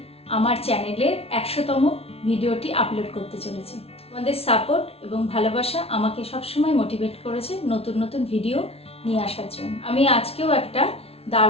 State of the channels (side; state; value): right; late; 0.29 ms